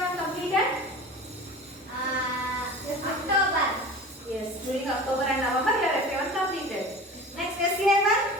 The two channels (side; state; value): both; normal; correlation 0.36